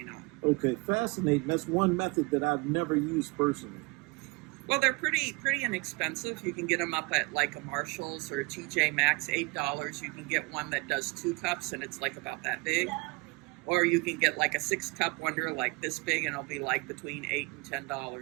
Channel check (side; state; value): left; quieter; 27.5 dB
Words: not. Okay, fascinating. That's one method that I've never used personally. Well, they're pretty inexpensive. You can get them up at like a Marshall's or a TJ Maxx, $8. You can get one that does 2 cups and it's like about that big. Or you can get like a 6-cup wonder like this big and it'll be like between $8 and